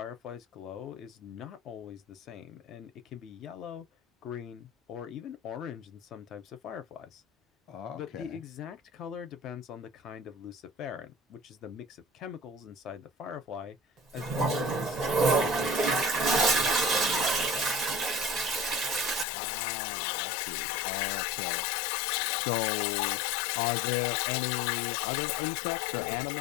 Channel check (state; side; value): drops out; right; at 19.2 s